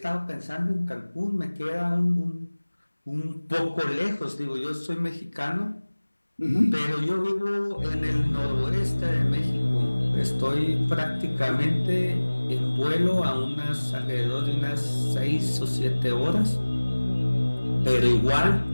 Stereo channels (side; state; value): both; inverted; correlation -1.00